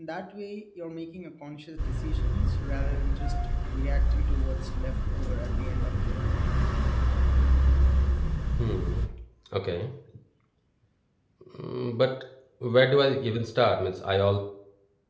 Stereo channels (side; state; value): both; identical; correlation 1.00